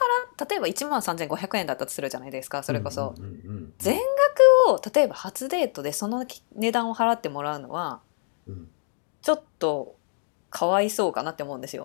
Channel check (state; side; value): silent; right; digital silence